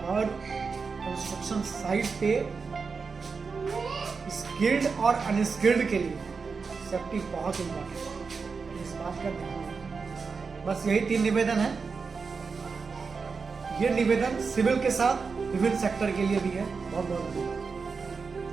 और कंस्ट्रक्शन साइट पे स्किल्ड और अनस्किल्ड के लिए सेफ्टी बहुत इंपॉर्टेंट है, इस बात का ध्यान रखें। बस यही 3 निवेदन है। ये निवेदन सिविल के साथ विभिन्न सेक्टर के लिए भी है। बहुत बहुत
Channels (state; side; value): quieter; left; 5.0 dB